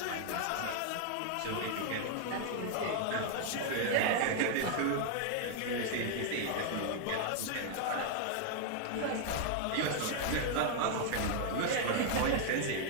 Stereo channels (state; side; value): different; both; correlation 0.00